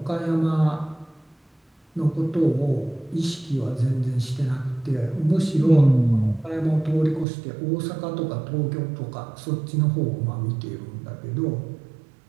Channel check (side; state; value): left; drops out; at 7.2 s